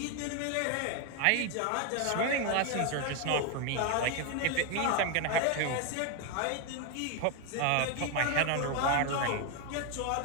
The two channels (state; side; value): different; both; correlation 0.01